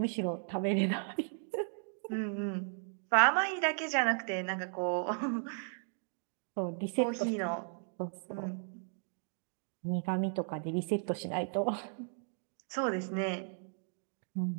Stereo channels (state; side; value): silent; left; 54 dB below the other